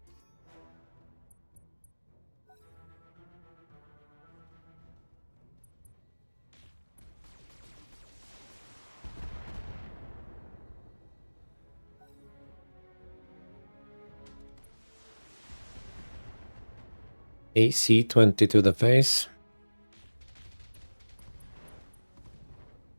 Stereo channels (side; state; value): both; inverted; correlation -1.00